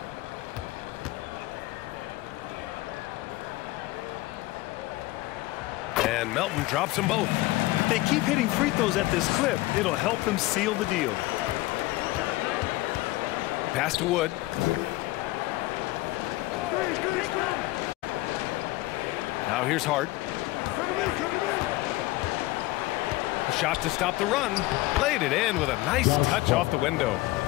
And Melton drops them both. If they keep hitting free throws at this clip, it'll help them seal the deal. Pass to Wood. Now here's Hart. A shot to stop the run. Played it in with a nice touch off the window.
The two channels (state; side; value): quieter; right; 19.2 dB